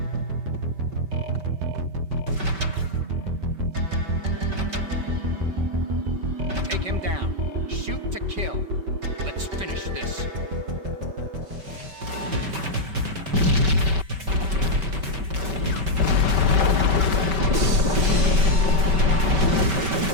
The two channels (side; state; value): left; late; 5.2 ms